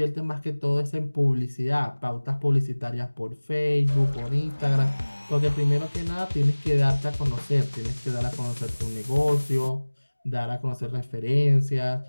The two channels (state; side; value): inverted; both; correlation -1.00